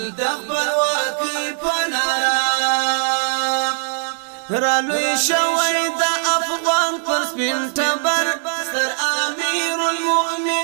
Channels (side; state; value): left; silent; digital silence